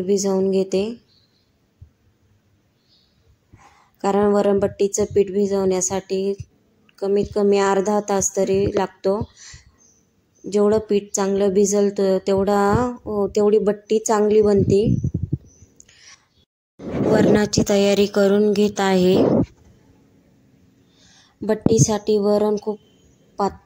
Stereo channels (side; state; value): both; identical; correlation 1.00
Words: भिजवून घेते, कारण वरणबट्टीचे पीठ भिजवण्यासाठी कमीत कमी अर्धा तास तरी लागतो। जेवढं पीठ चांगलं भिजल तेवढी बट्टी चांगली बनते। वरणाची तयारी करून घेत आहे। बट्टीसाठी वरण खूप